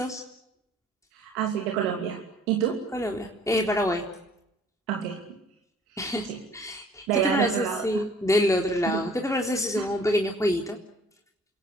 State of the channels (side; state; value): both; normal; correlation 0.55